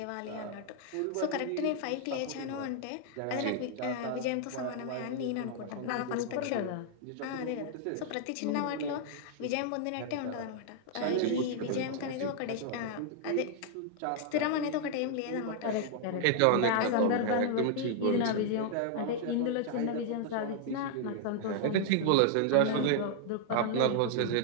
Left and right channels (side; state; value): both; different; correlation -0.01